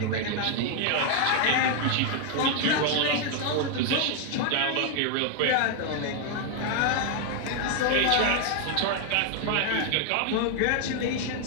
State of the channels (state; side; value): different; both; correlation 0.00